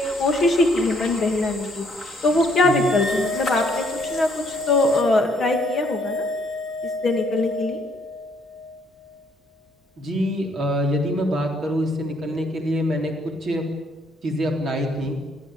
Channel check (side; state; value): both; normal; correlation 0.66